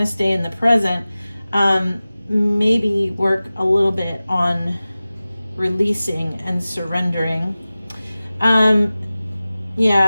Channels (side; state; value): both; inverted; correlation -0.97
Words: stay in the present. Maybe work a little bit on releasing and surrendering.